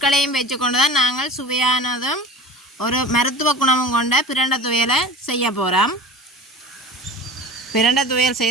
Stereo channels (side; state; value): both; normal; correlation 0.37